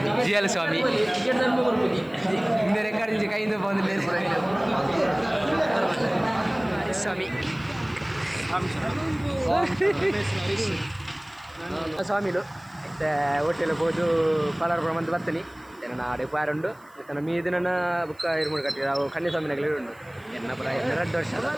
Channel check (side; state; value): right; noise; hiss, 30 dB below the sound